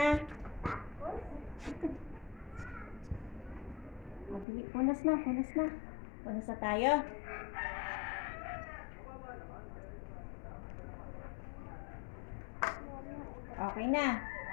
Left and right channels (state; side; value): drops out; right; at 4.5 s